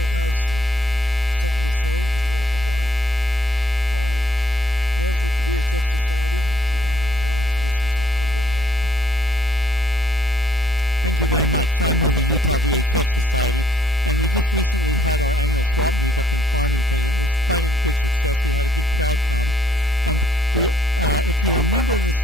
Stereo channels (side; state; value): both; normal; correlation 0.67